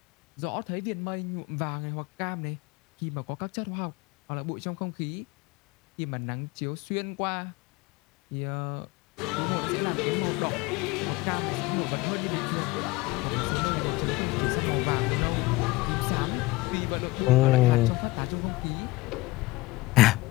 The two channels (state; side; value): quieter; right; 20.6 dB